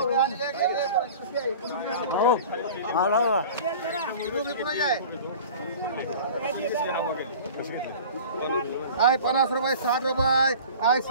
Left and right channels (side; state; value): both; inverted; correlation -0.40